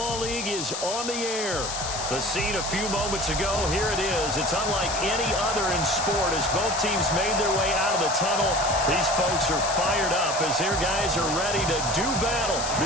League is on the air. The scene a few moments ago, here it is. It's unlike any other in sport as both teams made their way out of the tunnel. These folks are fired up as their guys are ready to do battle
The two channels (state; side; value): noise; left; hiss, 5 dB below the sound